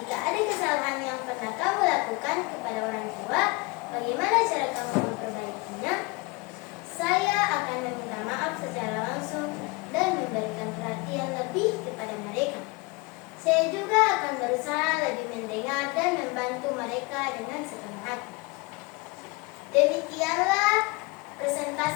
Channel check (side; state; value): right; quieter; 26.2 dB